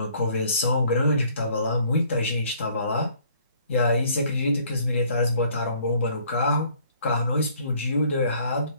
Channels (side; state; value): both; inverted; correlation -0.60